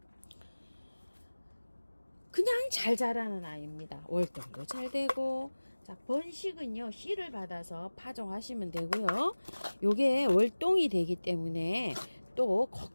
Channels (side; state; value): both; inverted; correlation -1.00